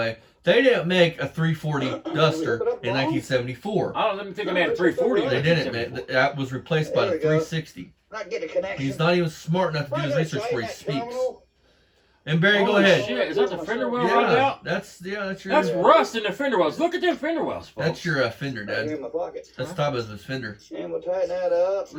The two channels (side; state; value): both; identical; correlation 1.00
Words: they didn't make a 340 Duster in 1974. I don't even think I made a 340. They didn't, man. That was replaced by the 360. Not get a connection. He's not even smart enough to do his research before he speaks. And Barry, go ahead. Shit, is that the fender well rotted Yeah, out? that's your. That's rust in the fender wells. Look at them fender wells, folks. That's your fender, Right here Dad. in my pocket. That's top of his fender. And we'll tighten that up.